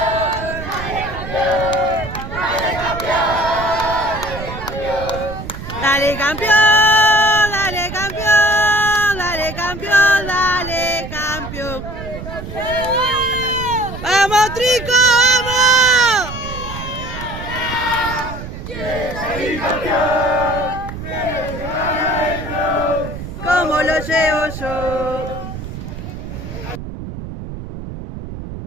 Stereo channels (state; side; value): noise; right; rumble, 9 dB below the sound